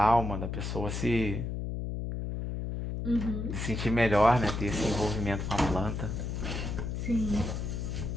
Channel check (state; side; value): noise; left; hum, 4 dB below the sound